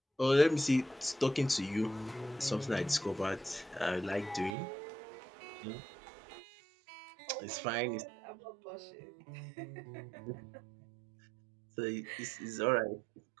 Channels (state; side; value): drops out; left; at 4.5 s